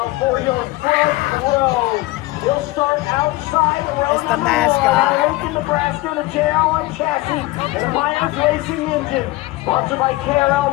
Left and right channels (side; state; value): right; quieter; 19.8 dB